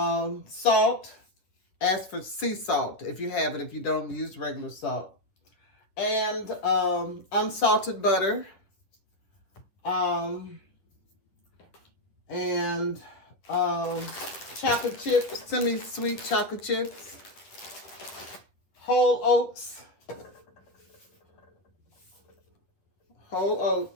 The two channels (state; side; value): late; right; 10 ms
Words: Ask for sea salt if you have it, if you don't use regular salt. And unsalted butter. And chocolate chips, semi-sweet chocolate chips, whole oats,